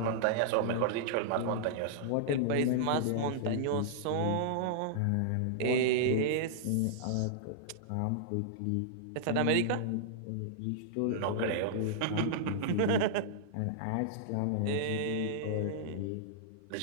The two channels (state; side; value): different; both; correlation -0.02